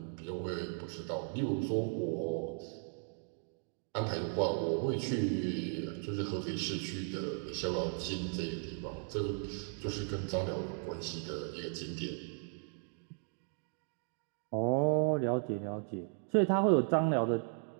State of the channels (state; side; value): silent; left; 54 dB below the other